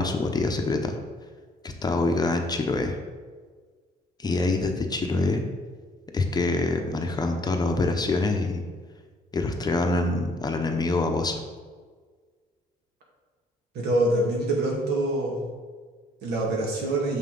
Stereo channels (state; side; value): normal; both; correlation 0.64